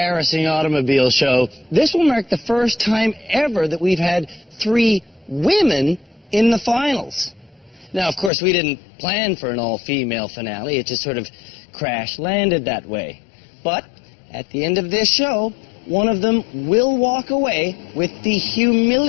automobile show, this will mark the first time ever that we've had 3 women in the finals. Now, of course, we didn't plan for an all-female finale. It just sort of crash-landed that way. But at the end of this show, one of them will walk away with the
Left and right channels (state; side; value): drops out; right; at 8.3 s